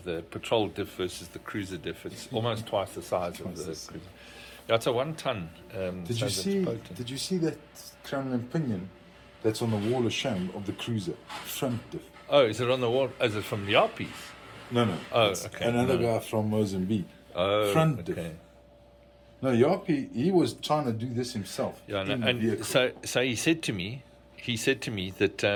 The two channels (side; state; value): both; identical; correlation 1.00